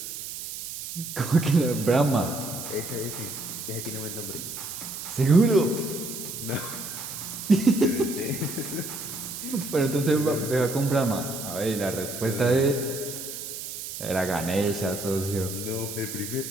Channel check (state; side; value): noise; right; hiss, 8 dB below the sound